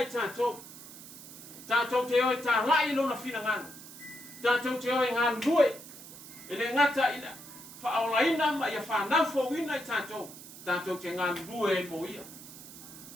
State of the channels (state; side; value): noise; right; hiss, 15 dB below the sound